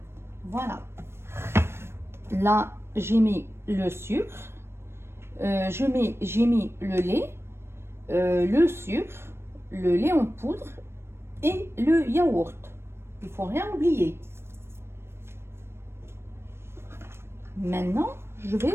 Voilà. Là, j'ai mis le sucre. J'ai mis le lait, le sucre, le lait en poudre et le yaourt. Il faut rien oublier. Maintenant, je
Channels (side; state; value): left; late; 0.12 ms